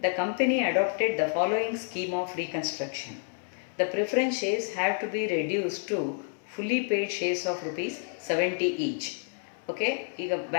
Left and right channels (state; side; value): silent; right; 57 dB below the other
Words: the company adopted the following scheme of reconstruction. The preference shares have to be reduced to fully paid shares of rupees 70 each. Okay, ಈಗ